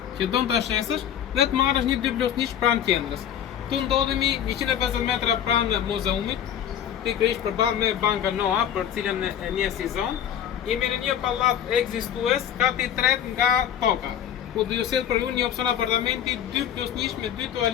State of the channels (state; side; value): quieter; right; 9.7 dB